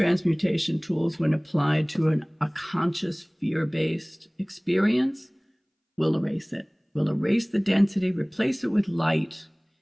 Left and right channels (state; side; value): identical; both; correlation 1.00